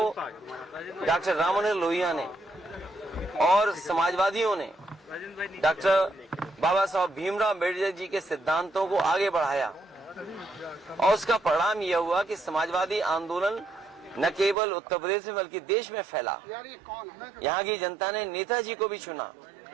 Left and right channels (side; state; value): left; drops out; at 14.6 s